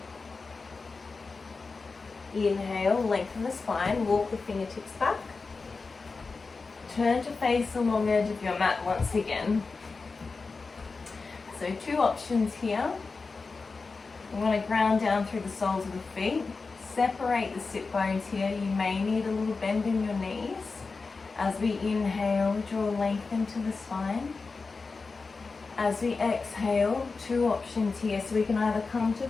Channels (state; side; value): quieter; right; 4.2 dB